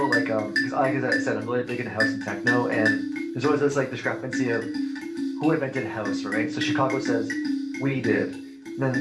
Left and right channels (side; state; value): both; identical; correlation 1.00